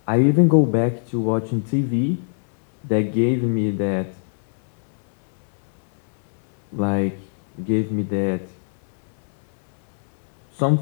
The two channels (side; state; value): right; silent; 65 dB below the other